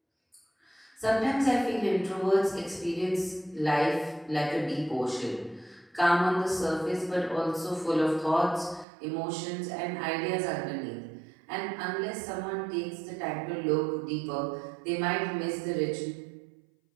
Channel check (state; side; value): drops out; left; at 8.8 s